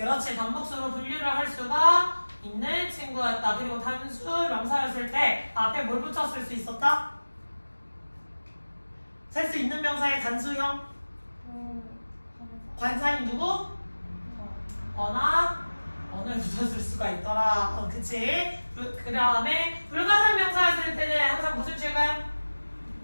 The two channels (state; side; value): inverted; both; correlation -1.00